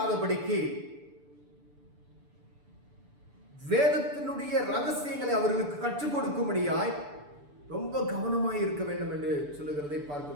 வேதத்தினுடைய ரகசியங்களை அவர்களுக்கு கற்றுக் கொடுக்கும்படியாய் ரொம்ப கவனமாய் இருக்க வேண்டும் என்று சொல்லுகிறதை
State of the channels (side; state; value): left; late; 6.9 ms